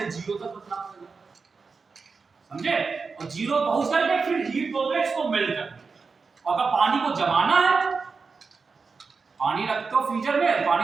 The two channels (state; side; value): quieter; left; 4.7 dB